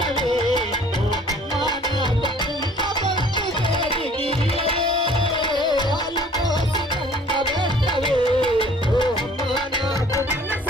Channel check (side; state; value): both; normal; correlation 0.53